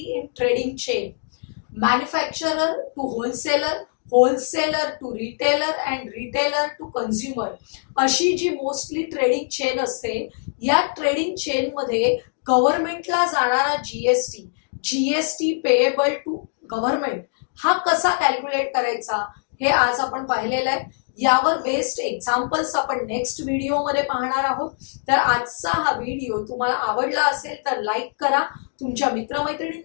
in trading chain, manufacturer to wholesaler, wholesaler to retailer and retailer to consumer, अशी जी मोस्टली ट्रेडिंग चेन असते, या ट्रेडिंग चेन मध्ये गव्हर्नमेंटला जाणारा GST, GST payable to government, हा कसा कॅल्क्युलेट करायचा हे आज आपण पाहिलेलं आहे. यावर बेस्ड एक्झाम्पल्स आपण नेक्स्ट व्हिडिओ मध्ये पाहणार आहोत. तर आजचा हा व्हिडिओ तुम्हाला आवडला असेल तर लाईक करा, तुमच्या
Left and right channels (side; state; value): right; silent; digital silence